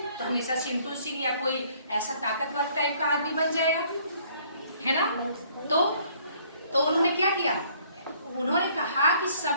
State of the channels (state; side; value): inverted; both; correlation -0.61